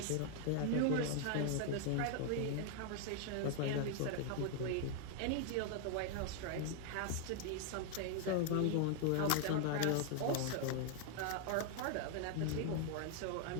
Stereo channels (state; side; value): different; both; correlation 0.00